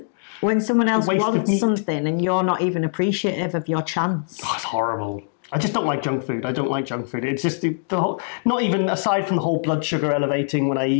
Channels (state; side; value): silent; right; digital silence